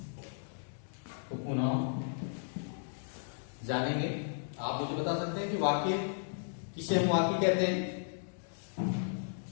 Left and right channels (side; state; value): right; silent; digital silence